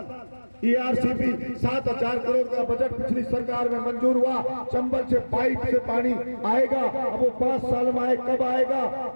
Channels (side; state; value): both; inverted; correlation -1.00